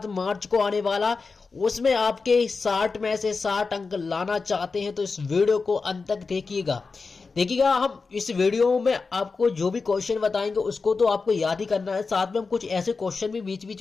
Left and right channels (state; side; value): quieter; right; 4.4 dB